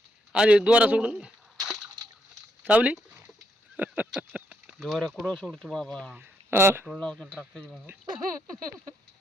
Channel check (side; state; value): both; normal; correlation 0.77